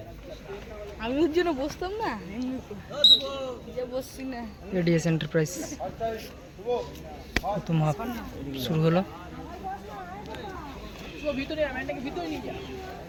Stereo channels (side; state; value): both; identical; correlation 1.00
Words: আমি ওর জন্য বসতাম না, বসছি না। Ads enterprise. প্রথম হাফ শুরু হলো।